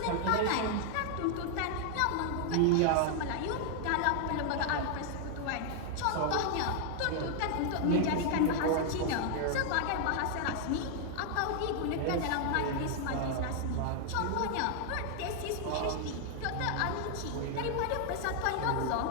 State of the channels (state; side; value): different; both; correlation 0.00